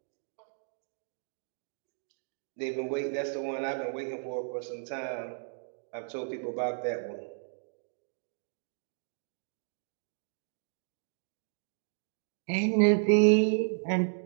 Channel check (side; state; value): left; silent; digital silence